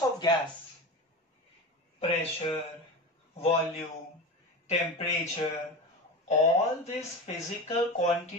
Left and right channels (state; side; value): normal; both; correlation 0.25